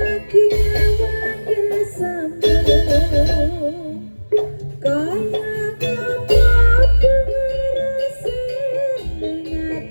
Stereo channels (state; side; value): inverted; both; correlation -1.00